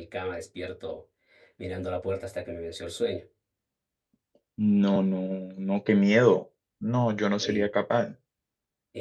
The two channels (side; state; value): both; identical; correlation 1.00